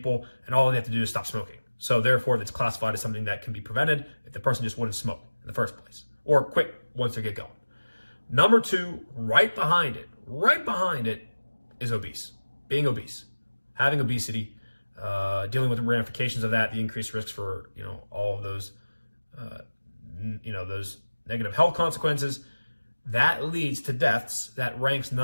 and all they have to do is stop smoking. So therefore, it's classified as something that can be prevented if the person just wouldn't smoke in the first place, or quit once they get going. Number 2, right behind it is obese. Being obese, having obesity, dealing with the ramifications of that, the increased risks for all of those, those negative health consequences. That leads to deaths. That ranks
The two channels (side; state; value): both; inverted; correlation -1.00